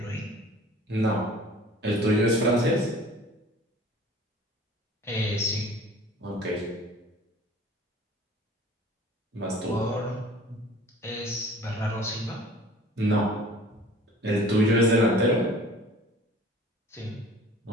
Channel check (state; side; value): normal; both; correlation 0.47